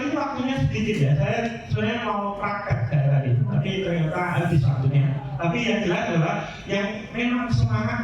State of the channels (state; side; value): identical; both; correlation 1.00